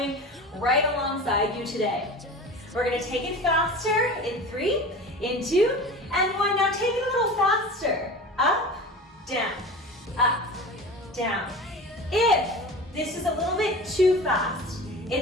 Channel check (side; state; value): both; normal; correlation 0.34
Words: right alongside you today. We're going to take it faster in 3, in 2, and 1. Now take it a little faster. Up, down, up, down. If this is a little bit too fast,